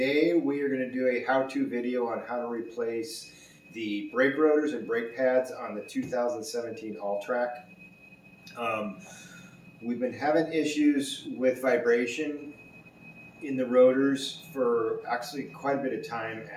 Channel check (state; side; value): identical; both; correlation 1.00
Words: we are going to do a how-to video on how to replace the brake rotors and brake pads on the 2017 Alltrack. We've been having issues with vibration in the rotors for actually quite a bit of time